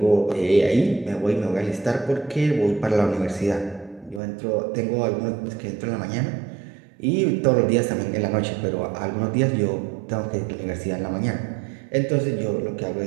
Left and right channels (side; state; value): left; drops out; at 4.2 s